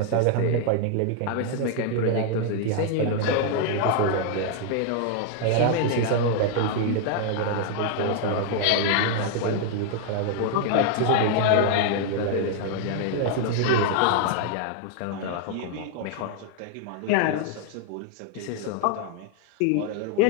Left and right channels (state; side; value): different; both; correlation 0.00